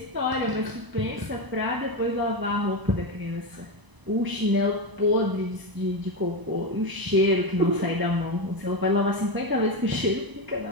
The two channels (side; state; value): left; late; 1.0 ms